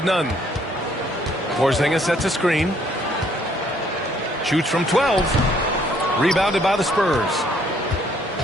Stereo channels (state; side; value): normal; both; correlation 0.65